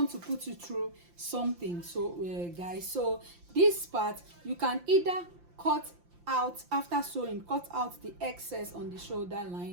to put you through something. So guys, so this part you can either cut out after sewing, cut out the excess on the shoulder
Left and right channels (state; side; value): late; left; 5.8 ms